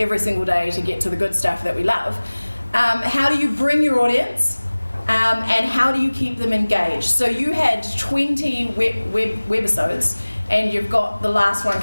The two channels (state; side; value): inverted; both; correlation -1.00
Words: single day to get to the good stuff that we love. How do you bring your audience and how do you keep them engaged? So you had 20 webisodes and you've got the last one